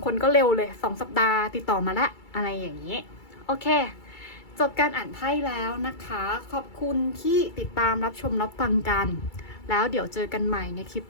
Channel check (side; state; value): right; late; 2.3 ms